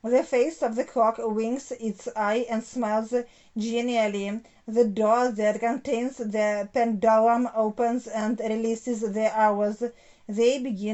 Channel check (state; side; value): identical; both; correlation 1.00